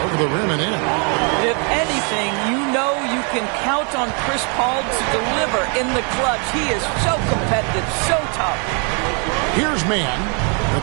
over the rim and in. If anything, you know you can count on Chris Paul to deliver in the clutch. He is so competitive, so tough. Here's Mann. The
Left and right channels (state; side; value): quieter; left; 37.5 dB